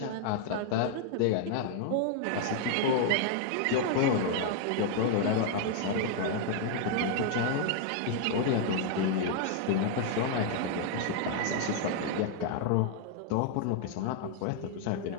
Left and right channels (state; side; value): different; both; correlation 0.00